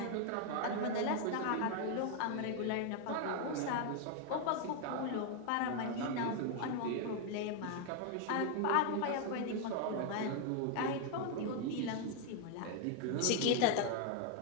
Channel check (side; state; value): both; different; correlation 0.00